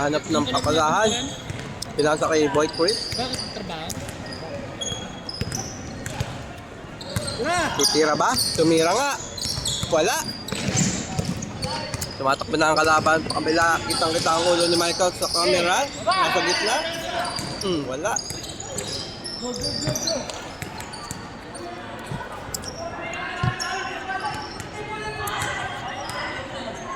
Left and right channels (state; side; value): identical; both; correlation 1.00